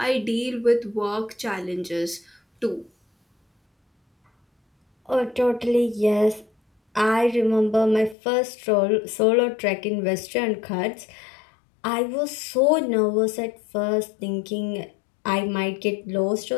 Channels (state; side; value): drops out; right; at 8.2 s